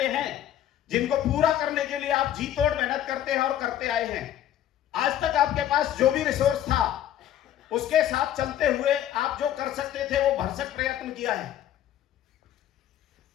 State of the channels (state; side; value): quieter; right; 11.4 dB